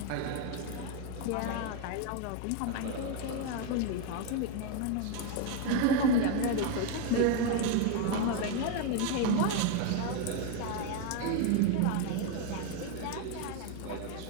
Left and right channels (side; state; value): both; different; correlation 0.01